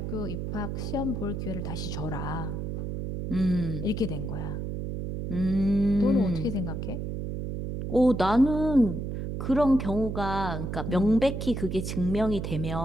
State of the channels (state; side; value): noise; right; hum, 4 dB below the sound